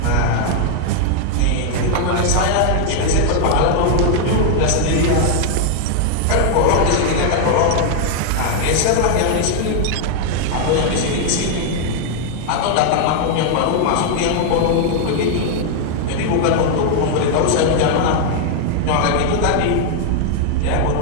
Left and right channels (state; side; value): different; both; correlation 0.00